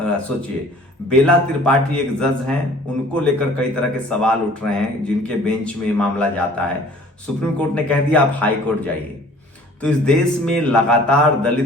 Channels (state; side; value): normal; both; correlation 0.51